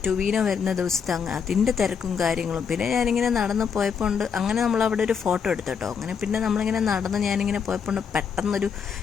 ടൊവീനോ വരുന്ന ദിവസത്തെ അതിൻ്റെ തിരക്കും കാര്യങ്ങളും. പിന്നെ ഞാനിങ്ങനെ നടന്ന് പോയപ്പോൾ അങ്ങനെ നമ്മളവിടെ ഒരു ഫോട്ടോ എടുത്തു കേട്ടോ. അങ്ങനെ പിന്നെ നമ്മളിങ്ങനെ നടന്ന് ഞാനിങ്ങനെ പോയപ്പോൾ പെട്ടെന്നൊരു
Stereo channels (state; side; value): quieter; right; 6.6 dB